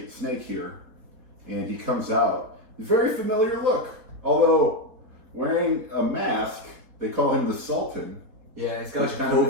the Snake here, and he comes out. Very familiar look, although wearing a mask. They call him the Sultan. Yeah, he's got a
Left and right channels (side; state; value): left; late; 4.4 ms